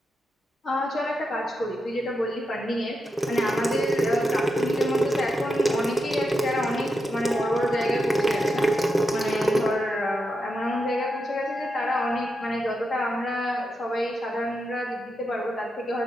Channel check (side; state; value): both; normal; correlation 0.86